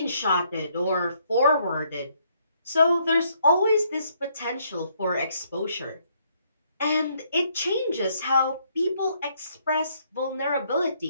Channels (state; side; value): inverted; both; correlation -0.70